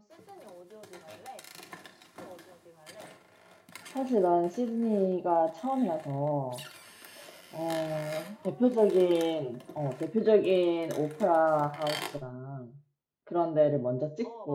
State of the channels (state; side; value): identical; both; correlation 1.00